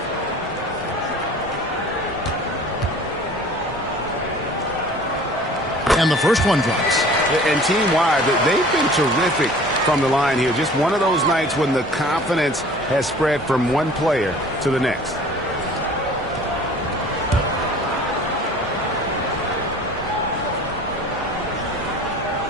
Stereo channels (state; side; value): normal; both; correlation 0.46